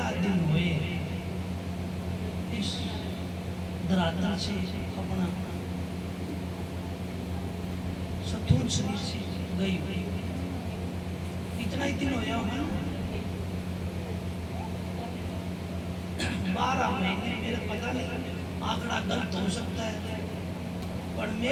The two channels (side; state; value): both; identical; correlation 1.00